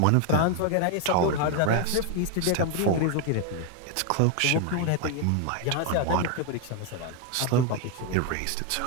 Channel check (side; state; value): both; different; correlation 0.01